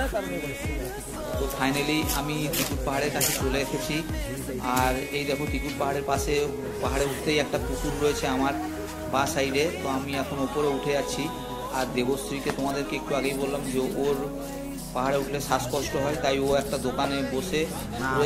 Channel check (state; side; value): identical; both; correlation 1.00